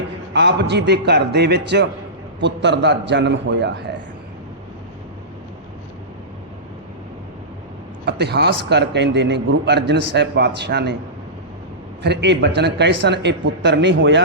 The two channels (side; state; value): both; normal; correlation -0.18